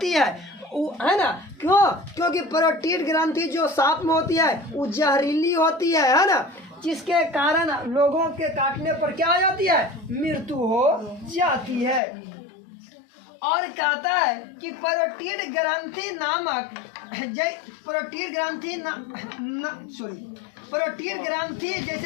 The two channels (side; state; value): right; drops out; at 12.0 s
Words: है ना। क्यों? क्योंकि पैरोटिड ग्रंथि जो सांप में होती है वो जहरीली होती है ना, जिसके कारण लोगों के काटने पर क्या हो जाती है? मृत्यु हो जाती है। और कहता है कि पैरोटिड ग्रंथि नामक पैरोटिड ग्रंथि